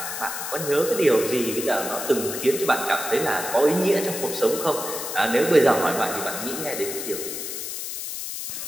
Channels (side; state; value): left; noise; hiss, 6 dB below the sound